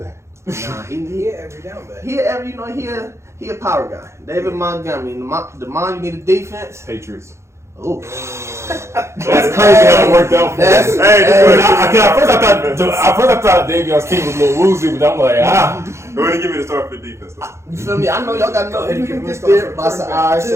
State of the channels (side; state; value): left; late; 0.13 ms